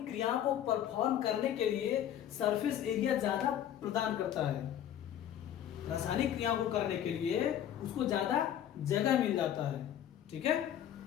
क्रियाओं को परफॉर्म करने के लिए सरफेस एरिया ज्यादा प्रदान करता है। रासायनिक क्रियाओं को करने के लिए उसको ज्यादा जगह मिल जाता है। ठीक है।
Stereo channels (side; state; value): right; quieter; 10.6 dB